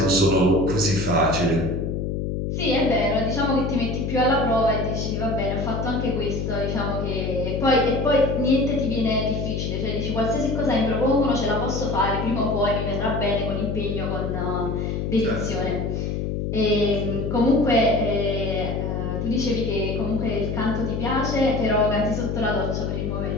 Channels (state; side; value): noise; left; hum, 2 dB below the sound